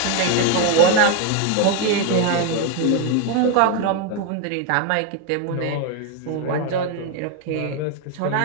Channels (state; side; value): different; both; correlation 0.01